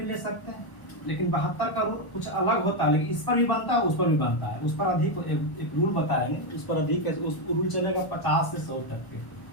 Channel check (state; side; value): late; right; 1.2 ms